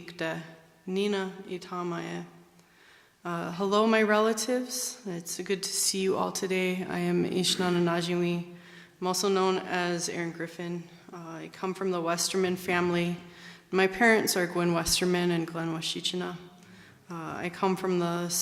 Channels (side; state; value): both; identical; correlation 1.00